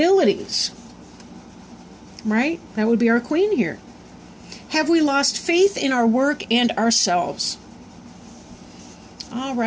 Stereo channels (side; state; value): both; identical; correlation 1.00